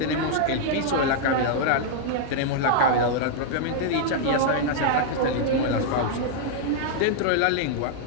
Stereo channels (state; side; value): different; both; correlation -0.01